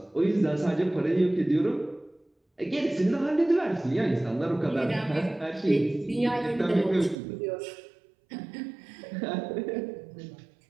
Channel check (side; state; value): left; drops out; at 7.2 s